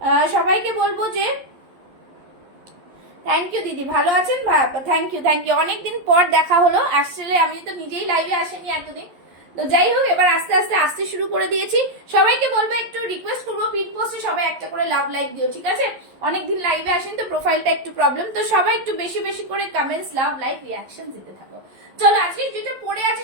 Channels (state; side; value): late; left; 11 ms